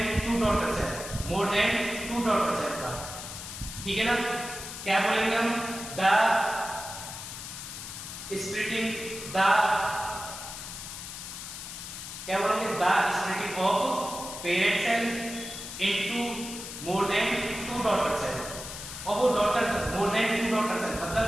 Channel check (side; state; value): left; noise; hiss, 9 dB below the sound